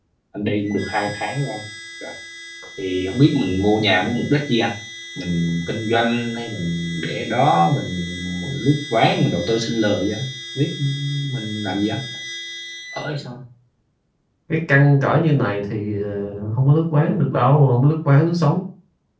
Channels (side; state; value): both; identical; correlation 1.00